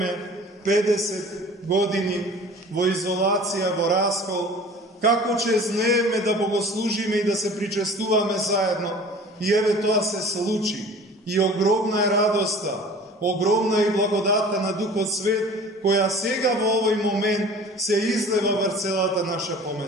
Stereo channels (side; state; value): both; normal; correlation 0.44